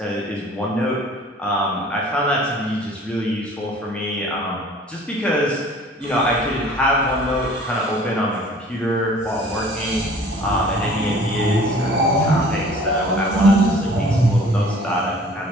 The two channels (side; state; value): both; normal; correlation 0.50